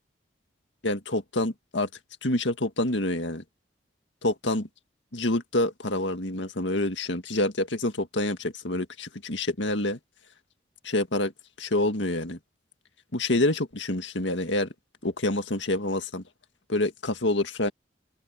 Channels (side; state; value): both; normal; correlation 0.12